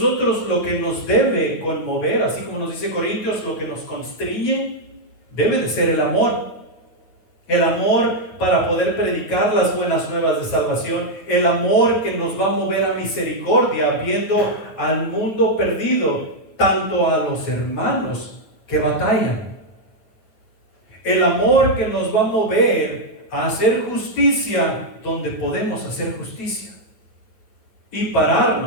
lo que nos debe conmover, así como nos dice Corintios, lo que nos constriñe, debe de ser el amor. El amor para poder predicar las buenas nuevas de salvación. El amor que nos va a mover a misericordia, viendo al mundo perdido, tanto a los hermanos que batallan. El amor que nos va a mover a hacer justicia donde podemos hacer justicia. Y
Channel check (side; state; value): right; late; 9.1 ms